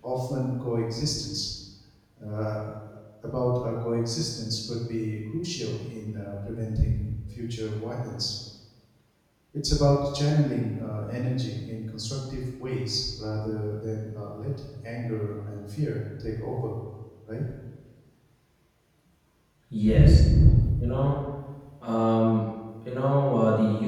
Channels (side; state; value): both; identical; correlation 1.00